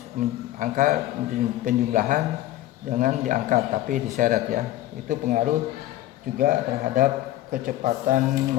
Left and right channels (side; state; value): right; quieter; 14.7 dB